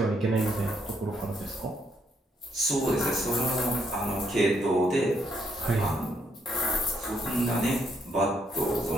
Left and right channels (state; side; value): normal; both; correlation 0.74